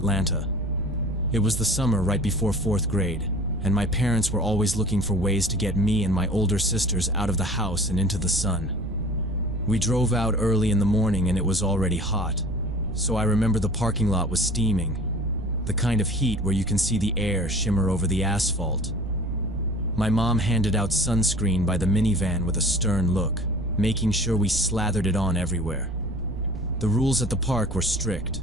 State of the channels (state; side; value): noise; right; rumble, 10 dB below the sound